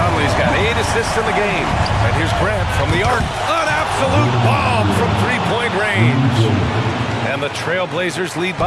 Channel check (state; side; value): identical; both; correlation 1.00